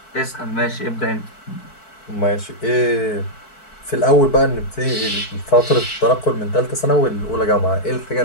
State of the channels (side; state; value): right; late; 4.6 ms